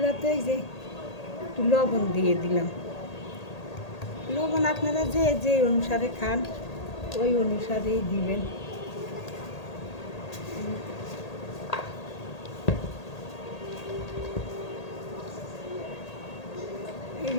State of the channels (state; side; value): late; right; 1.8 ms